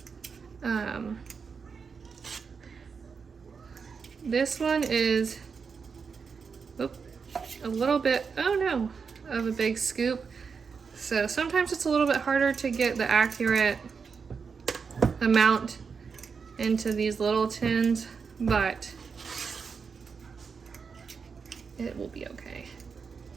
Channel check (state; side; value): quieter; left; 5.6 dB